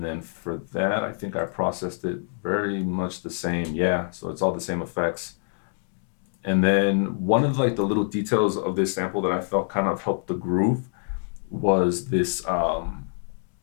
then for that, I think I processed it very much the same. Yeah, so it's all the same effects. And then one of like the little details of this sample that I felt kind of helped the groove was this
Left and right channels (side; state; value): right; silent; digital silence